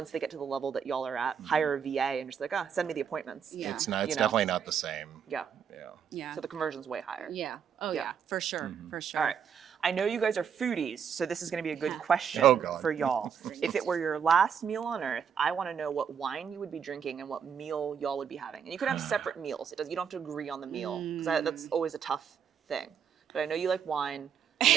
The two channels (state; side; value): quieter; left; 7.5 dB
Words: they get to the level that y'all are at, hire a VA and just like send me the appointments. Yeah. It's not. It's You know. definitely not the same. Yeah. Yeah. Yeah. So the conversion's way higher. Yeah. Oh, Yeah. yeah. For sure. For sure. All right. I know you guys are foodies, so this is going to be a good question Oh, God. for y'all. If it were your last meal on earth, I want to know what wine you would be drinking and what meal y'all would be having. And you could have separate meals. You don't have to agree on the meal, because that's always a tough thing. But I know you like wine. I